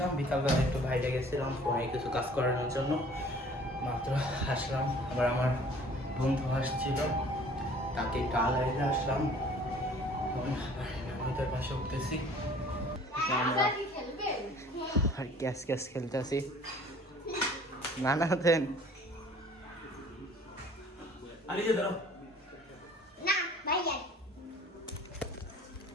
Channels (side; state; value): both; normal; correlation 0.51